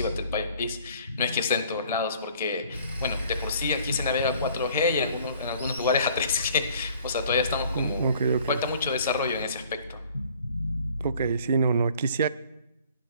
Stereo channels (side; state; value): both; inverted; correlation -0.55